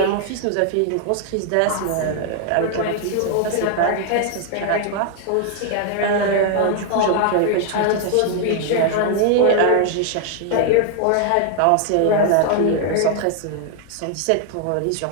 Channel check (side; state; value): both; different; correlation 0.00